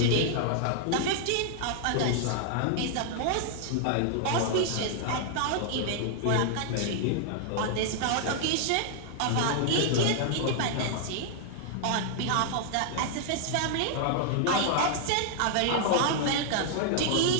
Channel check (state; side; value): different; both; correlation -0.01